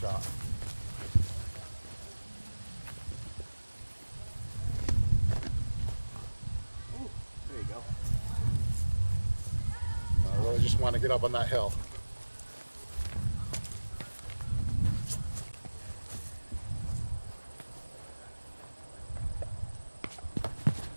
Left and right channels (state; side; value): inverted; both; correlation -1.00